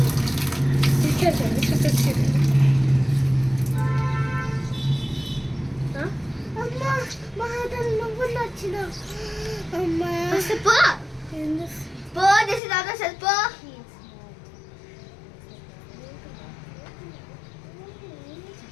పో చేసి దాంతో పో.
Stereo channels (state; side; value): drops out; right; at 12.6 s